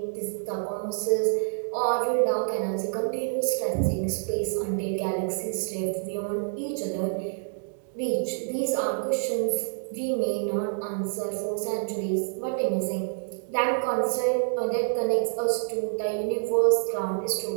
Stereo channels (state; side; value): silent; left; digital silence